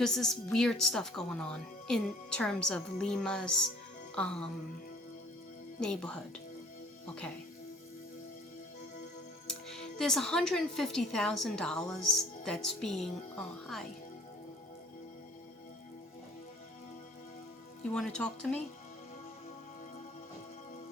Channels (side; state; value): both; normal; correlation 0.53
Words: there's weird stuff going on in terms of Lima's neighborhood. Okay. There's $150,000 that's being, oh, hi. You want to talk to me?